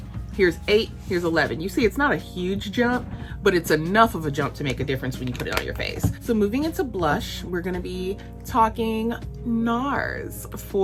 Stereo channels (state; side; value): identical; both; correlation 1.00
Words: Here's 8, here's 11. You see, it's not a huge jump, but it's enough of a jump to make a difference when you put it on your face. So moving into blush, we're gonna be talking Nars